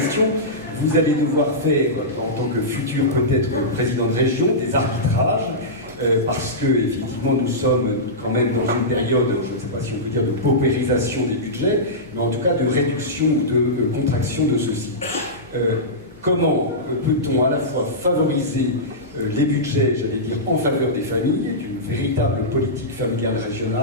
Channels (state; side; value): normal; both; correlation -0.15